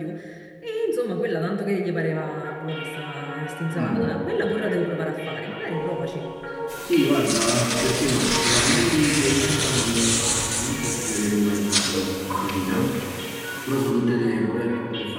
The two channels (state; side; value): identical; both; correlation 1.00